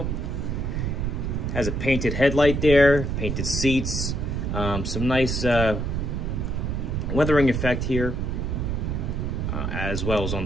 Has a painted headlight there, painted seats, some nice weathering effect here, as well as on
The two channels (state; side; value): noise; right; rumble, 1 dB below the sound